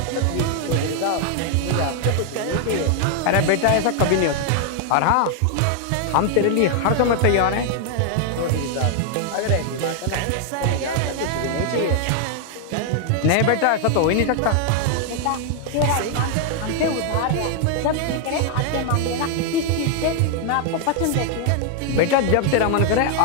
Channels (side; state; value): both; different; correlation 0.00